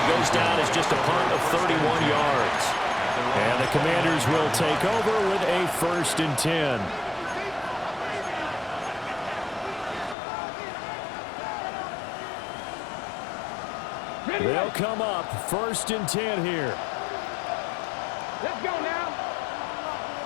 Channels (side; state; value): right; drops out; at 10.2 s